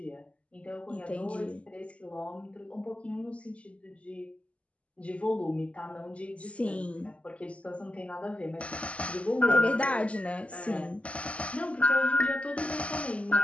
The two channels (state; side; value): late; right; 0.062 ms